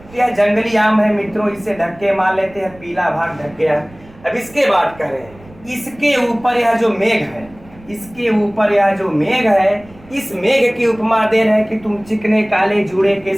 यह जंगली आम है मित्रों, इसे ढक के मान लेते हैं, पीला भाग ढक गया। अब इसके बाद कह रहे हैं, इसके ऊपर यह जो मेघ है, इसके ऊपर यह जो मेघ है, इस मेघ की उपमा दे रहे हैं कि तुम चिकने काले जूड़े के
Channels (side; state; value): right; noise; rumble, 24 dB below the sound